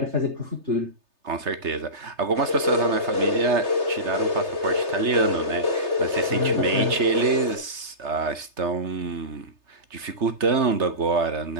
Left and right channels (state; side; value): late; left; 3.3 ms